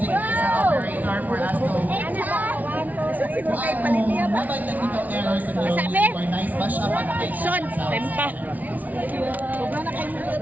sa operator for us to mabay technical errors in your music or nice ba siya pag-take Sean, tempa.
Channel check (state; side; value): late; left; 0.076 ms